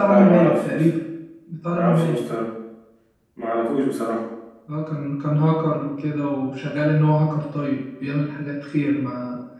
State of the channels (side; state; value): both; identical; correlation 1.00